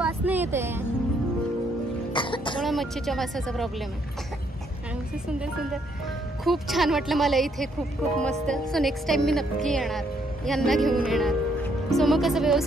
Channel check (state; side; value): normal; both; correlation 0.71